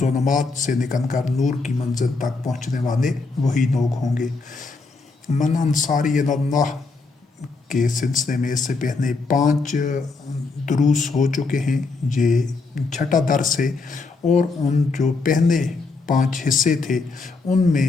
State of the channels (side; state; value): right; quieter; 4.0 dB